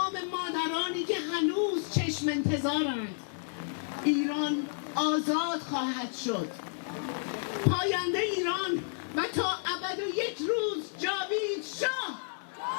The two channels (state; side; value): silent; right; 57 dB below the other